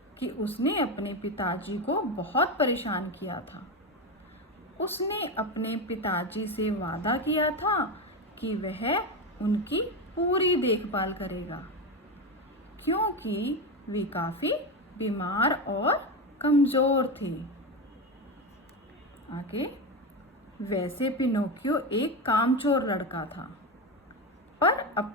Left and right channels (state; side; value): normal; both; correlation 0.16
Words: कि उसने अपने पिताजी को बहुत परेशान किया था। उसने अपने पिताजी से वादा किया था कि वह उनकी पूरी देखभाल करेगा, क्योंकि वे काफी बीमार और कमजोर थे। आगे, वैसे पिनोकियो एक कामचोर लड़का था, पर